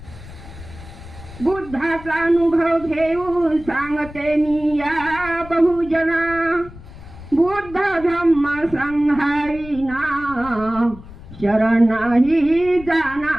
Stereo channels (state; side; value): noise; left; rumble, 16 dB below the sound